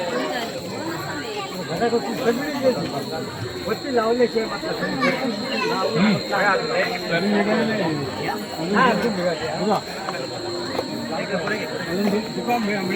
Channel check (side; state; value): both; identical; correlation 1.00